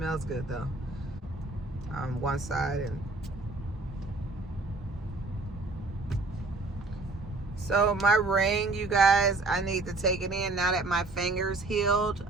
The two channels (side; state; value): left; quieter; 3.4 dB